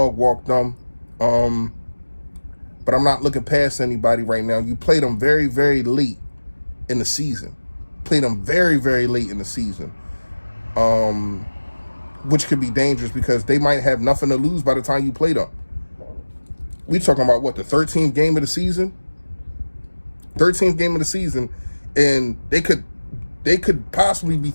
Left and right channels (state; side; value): inverted; both; correlation -1.00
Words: walk them. But I'm not looking past anybody right now. You played them very, very late in the season. Played them very, very late in the season. Which could be dangerous because they might have nothing to lose by the time you play them. We talking about what, the 13th game of the season? 13th game of the season, and they could possibly be